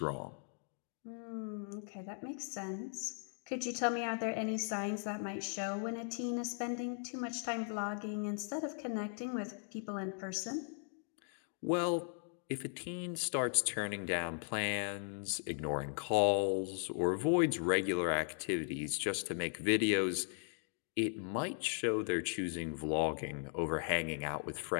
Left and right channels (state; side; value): silent; right; 52 dB below the other